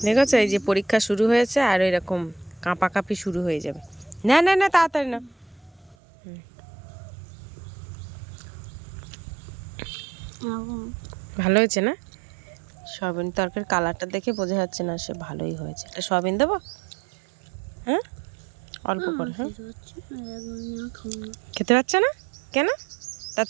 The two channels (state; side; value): drops out; left; at 6.0 s